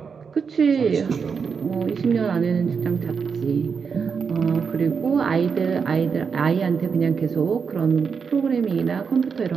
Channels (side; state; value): left; quieter; 5.9 dB